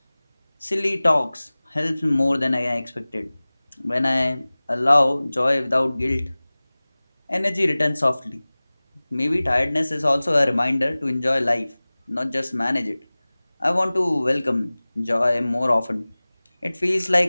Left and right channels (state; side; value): inverted; both; correlation -0.99